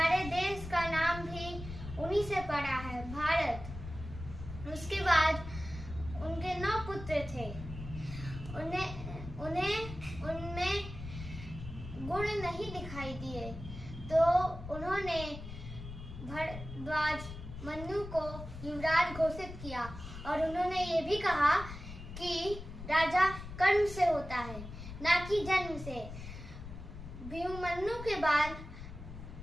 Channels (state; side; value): noise; left; rumble, 11 dB below the sound